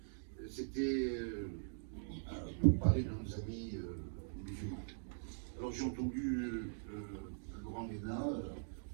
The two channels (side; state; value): left; silent; digital silence